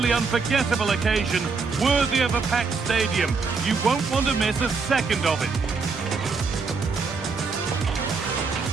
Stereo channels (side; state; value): left; quieter; 4.7 dB